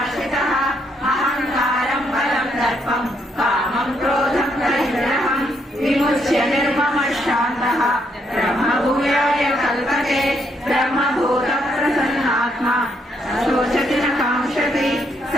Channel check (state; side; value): normal; both; correlation 0.74